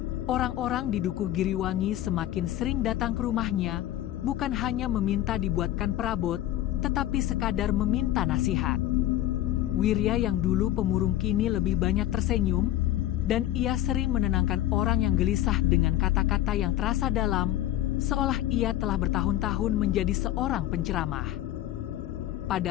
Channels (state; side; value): quieter; right; 13.6 dB